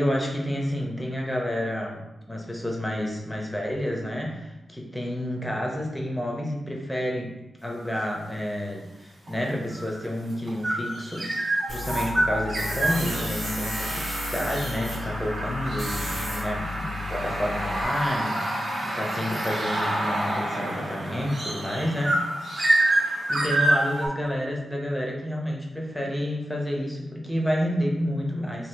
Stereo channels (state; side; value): normal; both; correlation 0.91